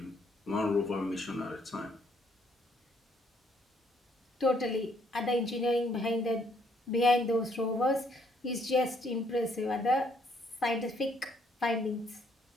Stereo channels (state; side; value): normal; both; correlation 0.68